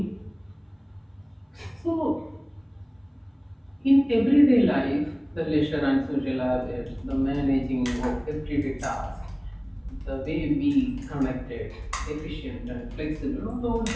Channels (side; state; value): both; identical; correlation 1.00